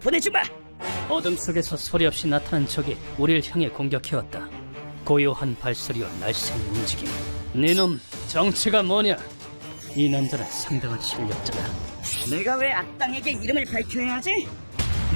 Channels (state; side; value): inverted; both; correlation -1.00